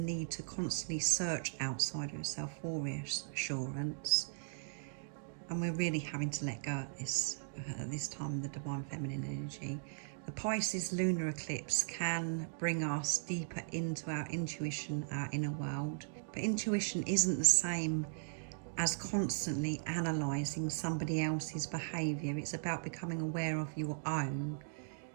to constantly search outside of yourself for reassurance. And we're really having to let go at this time, the divine feminine energy. The Pisces lunar eclipse can bring us deeper into our intuition, our inner world. But intuition isn't the same as constantly analysing somebody else's behaviour. It's about becoming aware of your own,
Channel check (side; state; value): left; silent; digital silence